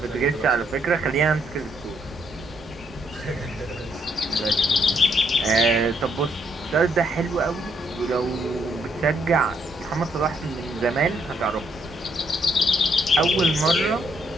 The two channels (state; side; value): normal; both; correlation 0.73